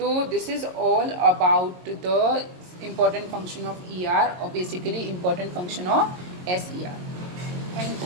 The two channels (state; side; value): late; left; 22 ms